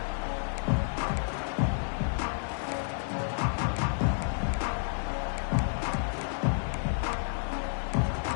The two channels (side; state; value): right; silent; digital silence